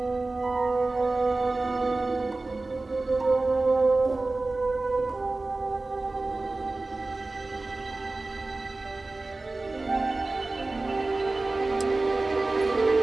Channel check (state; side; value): quieter; left; 3.2 dB